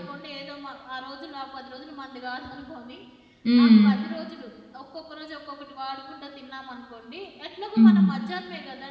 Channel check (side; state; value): both; identical; correlation 1.00